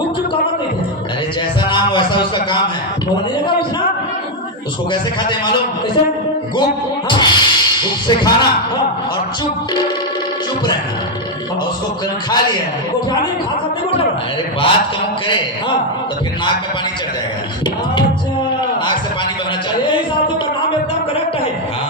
काबर नहीं थे अरे जैसा नाम वैसा उसका काम है। बोलने लगा उसना उसको कैसे खाते हैं मालूम? कैसे गुप हाँ गुप से खाना हाँ। और चुप रहना और उसको खा लिया। गोठाने खा सकते गोठा अरे बात कम करे हाँ। तो फिर नाक में पानी चढ़ जाएगा। अच्छा नाक से पानी बहना चाहिए। ये हिसाब से तो नाम एकदम करेक्ट है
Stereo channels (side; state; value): both; normal; correlation 0.02